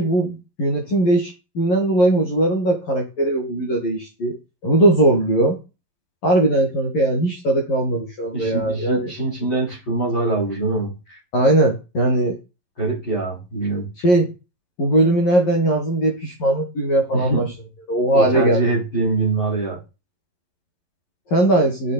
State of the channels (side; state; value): right; late; 11 ms